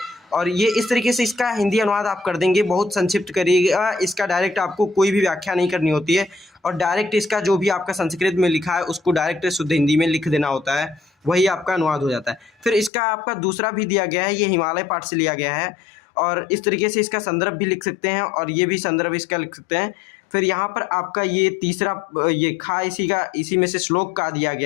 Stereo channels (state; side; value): drops out; right; at 12.9 s